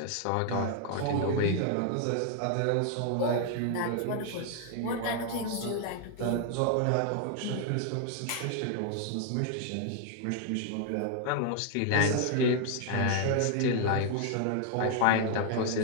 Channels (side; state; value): both; different; correlation 0.00